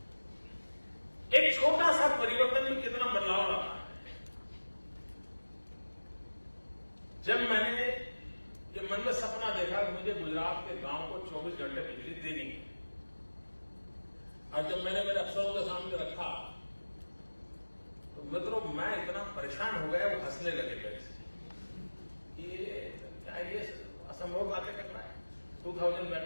एक छोटा सा परिवर्तन में कितना बदलाव लाता है। जब मैंने ये मन में सपना देखा कि मुझे गुजरात के गांव को 24 घंटे बिजली देनी है, और जब मैंने मेरे अफसरों के सामने रखा, तो मित्रों मैं इतना परेशान हो गया, वो हंसने लगे मेरे से। ये क्या, ये असंभव बातें कर रहा है, 2000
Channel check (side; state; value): both; inverted; correlation -1.00